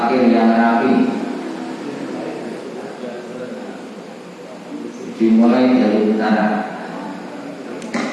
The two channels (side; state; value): both; identical; correlation 1.00